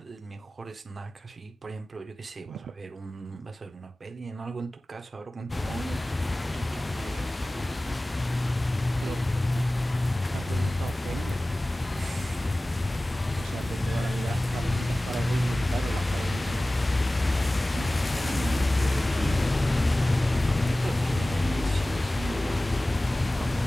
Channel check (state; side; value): normal; both; correlation 0.97